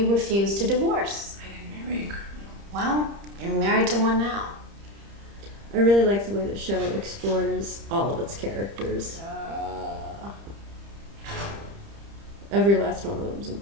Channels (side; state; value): left; late; 30 ms